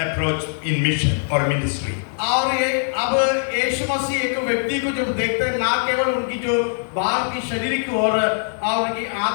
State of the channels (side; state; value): right; silent; 65 dB below the other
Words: in mission or ministry. और ये अब यीशु मसीह एक व्यक्ति को जब देखते हैं, ना केवल उनकी जो बाहर की शरीर की ओर और उनकी